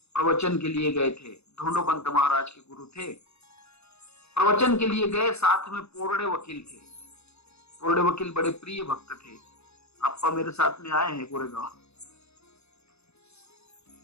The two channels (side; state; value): right; late; 0.80 ms